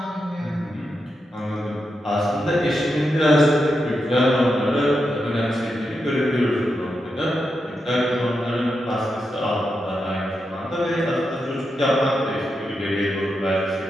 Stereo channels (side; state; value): both; normal; correlation 0.86